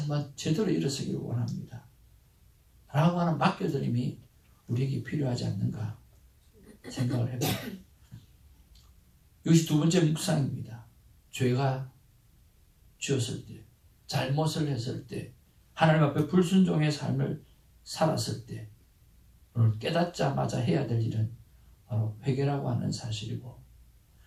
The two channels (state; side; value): identical; both; correlation 1.00